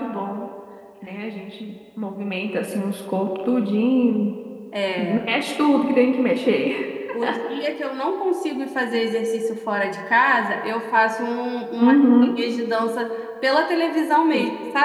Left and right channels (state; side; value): identical; both; correlation 1.00